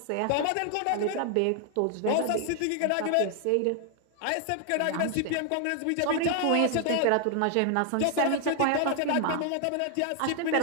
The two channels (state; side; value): different; both; correlation 0.00